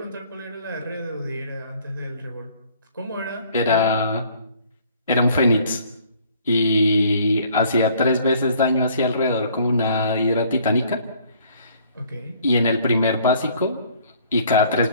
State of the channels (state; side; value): inverted; both; correlation -0.58